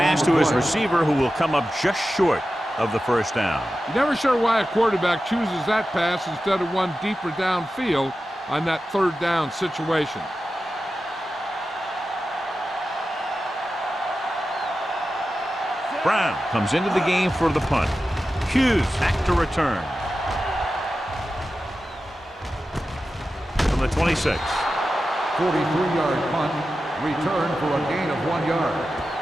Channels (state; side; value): normal; both; correlation 0.93